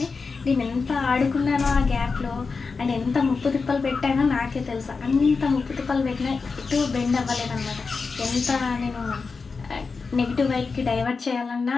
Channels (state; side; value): quieter; right; 4.6 dB